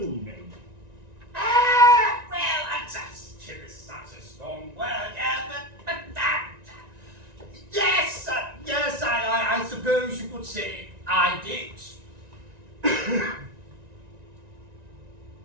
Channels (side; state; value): left; late; 1.9 ms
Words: me? Well, kill is such a strong word, but yes, I suppose you could say I did.